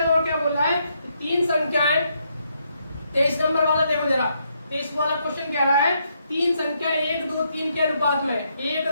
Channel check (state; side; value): inverted; both; correlation -0.77